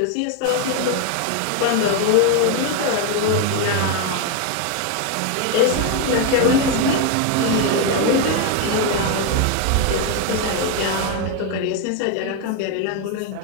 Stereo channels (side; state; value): both; different; correlation 0.01